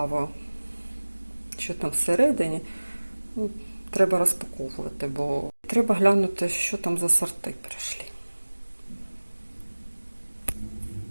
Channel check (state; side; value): inverted; both; correlation -1.00